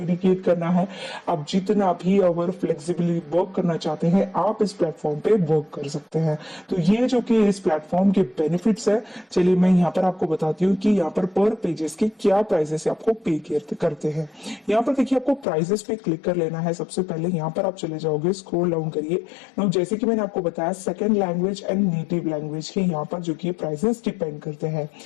करना है। आप जितना भी आवर फ्लेक्सिबली वर्क करना चाहते हैं आप इस प्लेटफॉर्म पे वर्क कर सकते हैं। तो ये जो कि इस प्लेटफॉर्म के बेनिफिट्स है। चलिए मैं यहाँ पर आपको बताती हूँ कि यहाँ पर पेजेस के क्या प्राइसेस आपको पे करते हैं। यहाँ पर देखिए, आपको प्राइसेस पे क्लिक कर लेना है। सबसे पहले यहाँ पर आप चले जाओगे, स्क्रॉल डाउन करिए। नाउ जैसे कि मैंने आपको बताया, second language and native language के यहाँ पर जो कि प्राइसेस डिपेंड करते हैं।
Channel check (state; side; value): drops out; right; at 15.5 s